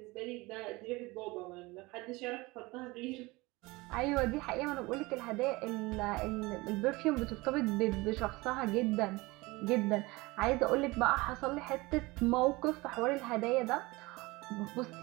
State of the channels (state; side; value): quieter; left; 22.5 dB